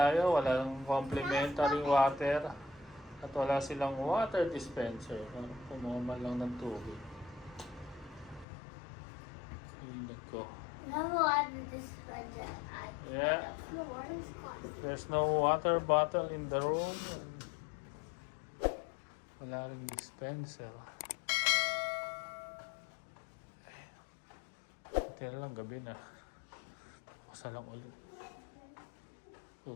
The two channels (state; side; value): drops out; right; at 8.5 s